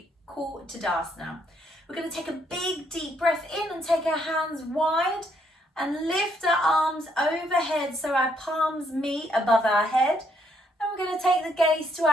call Tadasana. We're going to take a big deep breath in and take our hands wide and lift our arms overhead so our palms meet above our head. And we're going to take the gaze to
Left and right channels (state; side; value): normal; both; correlation 0.72